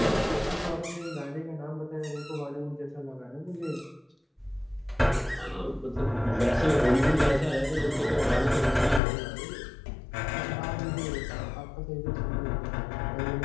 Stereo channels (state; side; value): drops out; right; at 9.0 s